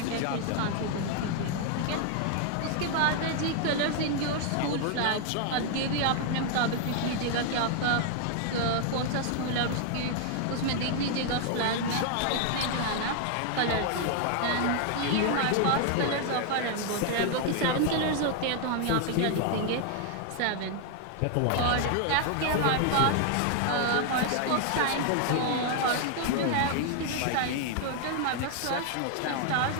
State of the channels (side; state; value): both; different; correlation 0.00